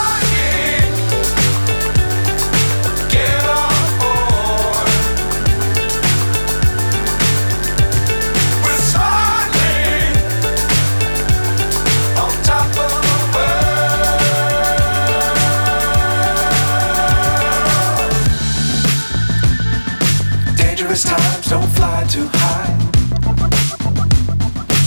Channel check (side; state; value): both; inverted; correlation -1.00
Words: Times don't fly too high.